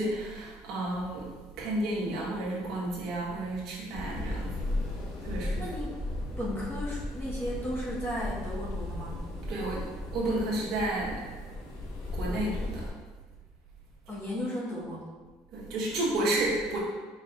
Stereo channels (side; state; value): both; normal; correlation 0.64